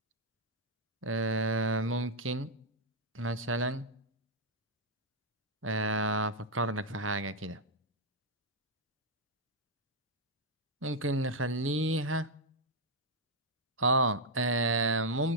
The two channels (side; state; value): both; normal; correlation -0.02